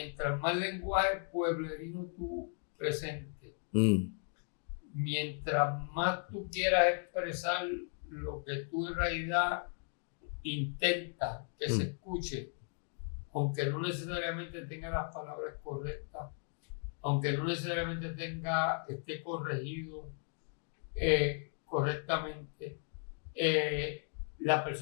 más lenguaje pueblerino tú presentes, mientras más tú quieras expresar lo que tú en realidad intentas que se escuche, aunque no necesariamente tenga las palabras correctas, aunque no necesariamente esté corregido correctamente, la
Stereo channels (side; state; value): right; silent; 54 dB below the other